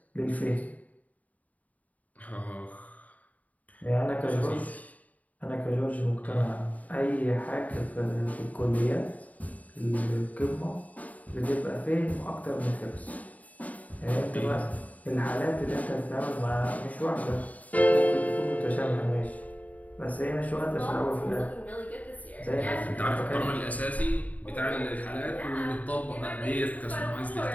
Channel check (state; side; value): late; right; 0.072 ms